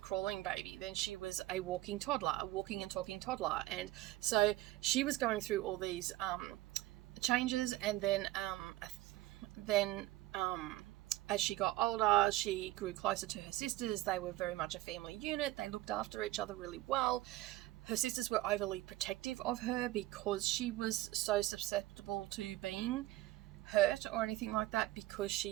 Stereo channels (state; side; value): quieter; left; 16.8 dB